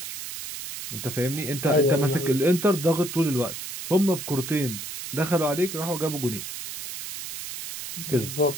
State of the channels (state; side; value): noise; right; hiss, 8 dB below the sound